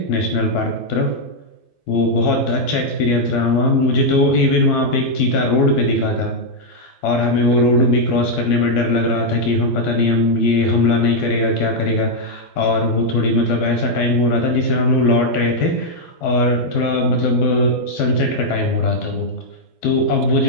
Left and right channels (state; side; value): late; right; 12 ms